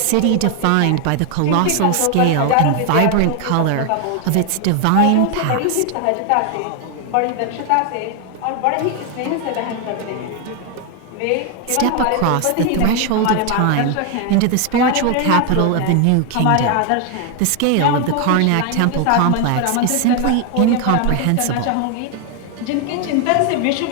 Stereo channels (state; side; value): different; both; correlation 0.01